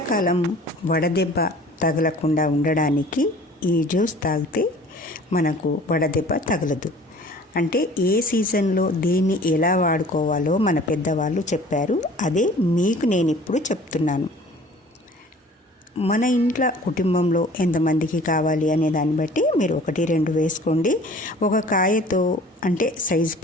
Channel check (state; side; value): normal; both; correlation 0.48